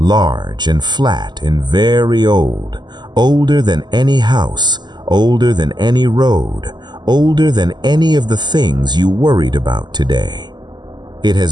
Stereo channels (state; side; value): late; left; 0.21 ms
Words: and flat and very old, older than any house, older than any road, older than any of the things you worried about today. It